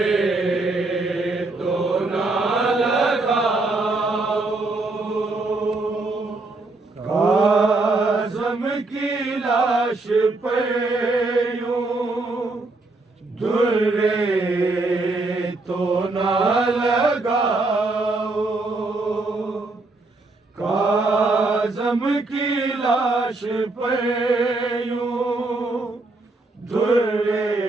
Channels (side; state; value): left; quieter; 3.2 dB